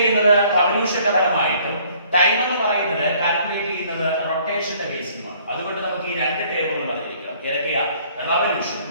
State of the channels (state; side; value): inverted; both; correlation -0.59